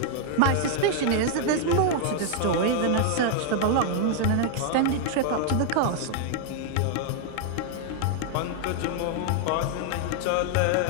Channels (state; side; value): different; both; correlation 0.00